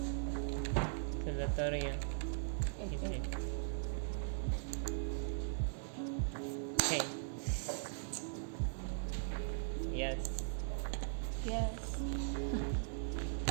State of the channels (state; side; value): silent; left; digital silence